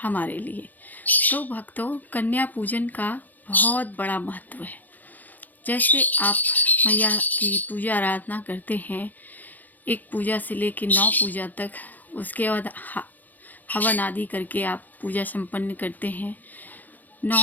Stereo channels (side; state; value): right; late; 0.083 ms